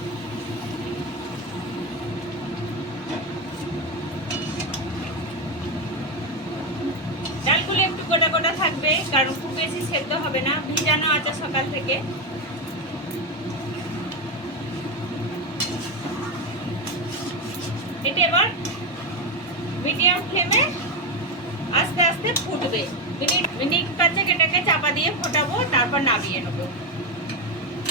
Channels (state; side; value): normal; both; correlation 0.10